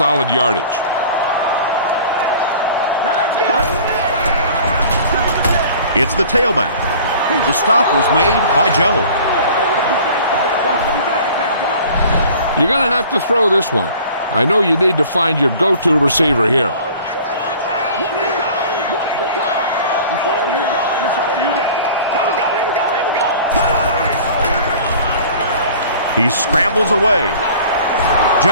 yardage. Now let's go. It's the tailback. The stop was made by Joe. You're going to have to throw this one. I know you need to find your go-to receiver here. He scrambles away.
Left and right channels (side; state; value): both; inverted; correlation -0.46